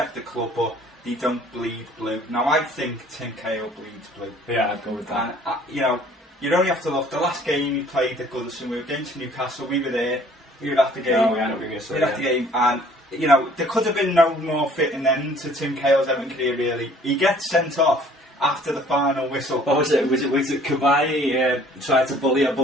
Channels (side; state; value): both; normal; correlation 0.55